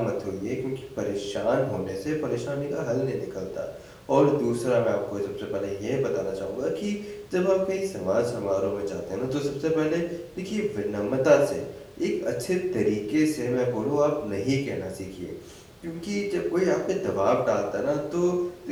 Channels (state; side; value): identical; both; correlation 1.00